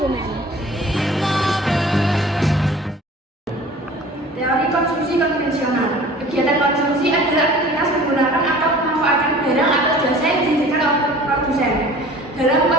Teori konsumsi konvensional. Kegiatan konsumsi adalah aktivitas menggunakan atau memanfaatkan barang atau jasa yang dihasilkan oleh produsen. Dalam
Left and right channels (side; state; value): both; normal; correlation 0.45